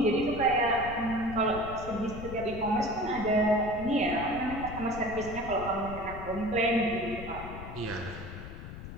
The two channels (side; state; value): left; noise; rumble, 11 dB below the sound